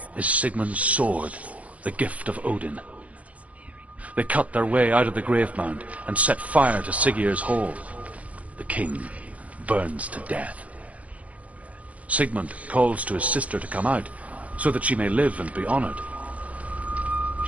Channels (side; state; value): left; late; 0.068 ms